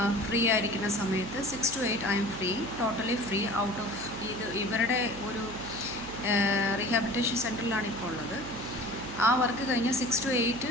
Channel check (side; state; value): right; noise; hum, 12 dB below the sound